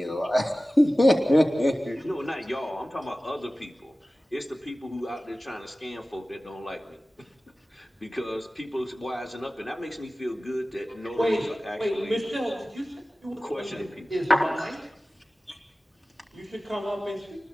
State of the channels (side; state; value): both; normal; correlation 0.96